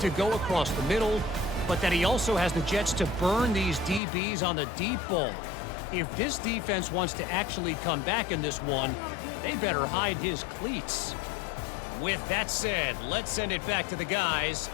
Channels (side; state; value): right; drops out; at 4.0 s